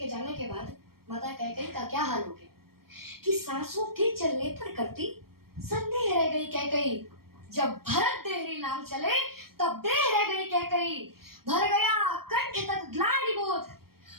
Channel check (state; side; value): late; left; 0.94 ms